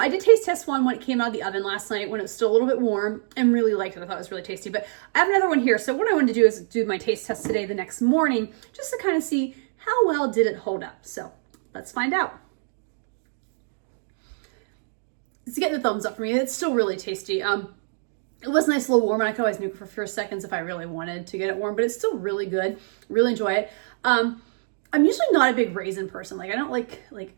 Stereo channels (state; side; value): silent; left; digital silence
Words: did taste test one when it came out of the oven last night when it was still a little bit warm and really liked it. I thought it was really tasty, but I have another one here. So what I wanted to do is do my taste test today the next morning just to kind of see how well did it hold up. So let's find out. It's getting the thumbs up for me. It's still really tasty. It was nice, a little warm, and I could always nuke it for a few seconds if I really wanted to get it warm, but it's still really good. Really enjoy it. I'm usually not a big raisin person. Like I don't like